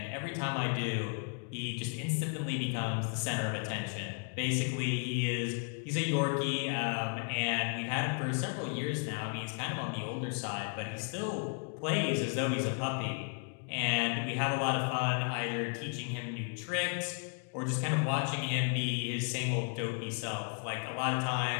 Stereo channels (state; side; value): quieter; right; 39.6 dB